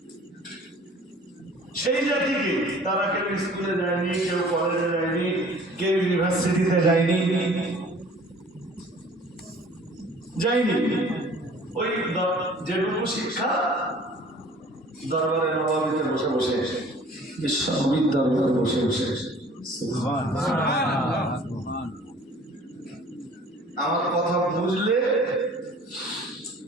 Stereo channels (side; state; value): both; normal; correlation 0.50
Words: সেই জাতিকে তারা কেউ স্কুলে যায়নি, কেউ কলেজে যায়নি, কেউ ইউনিভার্সিটিতে যায়নি, ওই যেটুকু শিক্ষা দরবারে নবাবিতে বসে বসে, বিশ্বনবীর দরবারে বসে বসে। আমার কথা বুঝলে